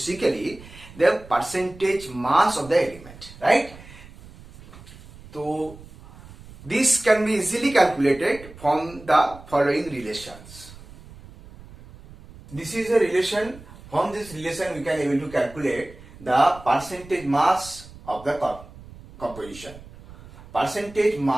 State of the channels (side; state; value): right; noise; rumble, 19 dB below the sound